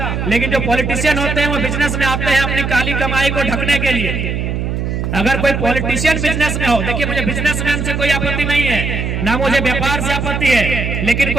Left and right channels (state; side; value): noise; right; hum, 2 dB below the sound